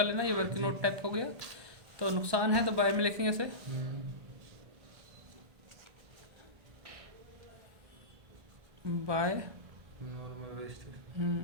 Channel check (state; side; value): late; left; 1.2 ms